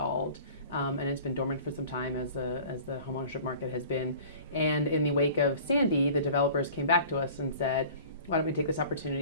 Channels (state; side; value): inverted; both; correlation -0.45